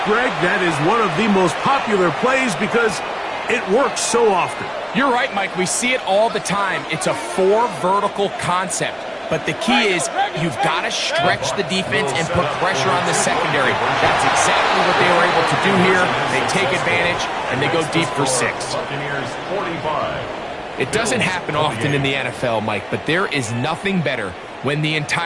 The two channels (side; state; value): both; identical; correlation 1.00